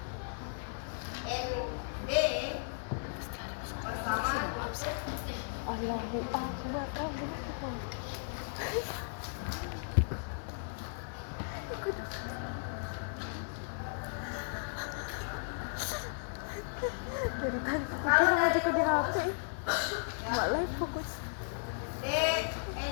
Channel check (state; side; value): silent; right; 54 dB below the other